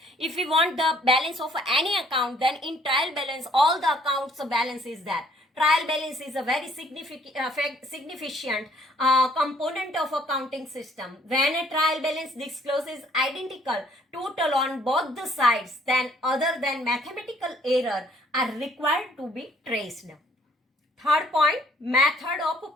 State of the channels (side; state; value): both; normal; correlation 0.61